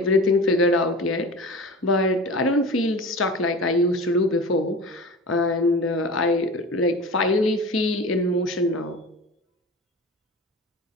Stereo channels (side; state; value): both; normal; correlation 0.34